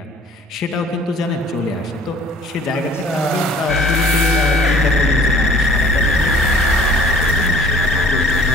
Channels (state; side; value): normal; both; correlation 0.52